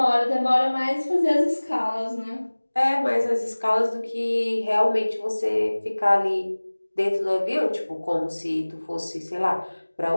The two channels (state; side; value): inverted; both; correlation -1.00